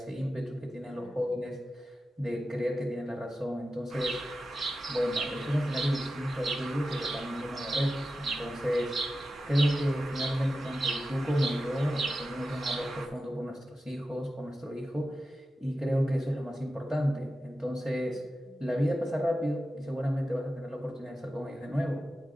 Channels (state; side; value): normal; both; correlation 0.92